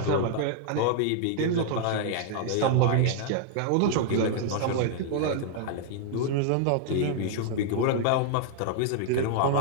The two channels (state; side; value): different; both; correlation -0.01